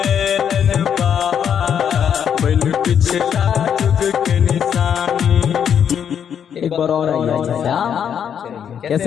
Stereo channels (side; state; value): right; quieter; 8.3 dB